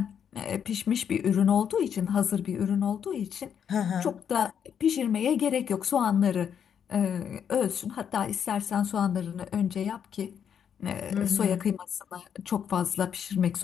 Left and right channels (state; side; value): quieter; right; 8.2 dB